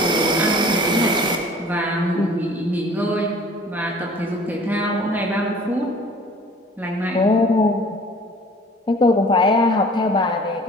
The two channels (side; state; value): both; normal; correlation 0.49